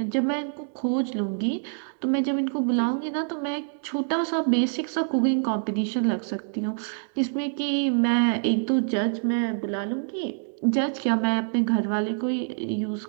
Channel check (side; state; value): left; silent; digital silence